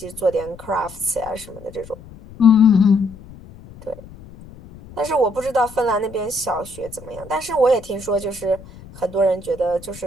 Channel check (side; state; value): left; noise; rumble, 19 dB below the sound